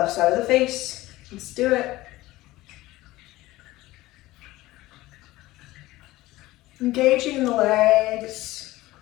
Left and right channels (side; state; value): right; quieter; 17.9 dB